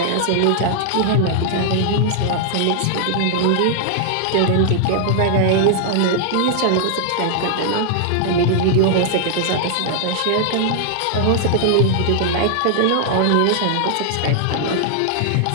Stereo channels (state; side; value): different; both; correlation -0.01